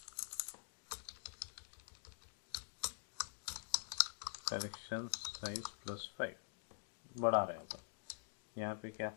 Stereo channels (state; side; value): silent; right; digital silence